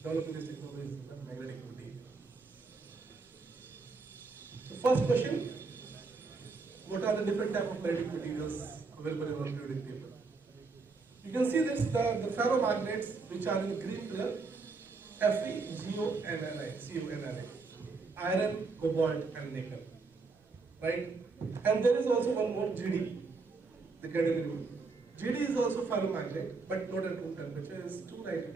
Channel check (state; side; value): quieter; left; 4.2 dB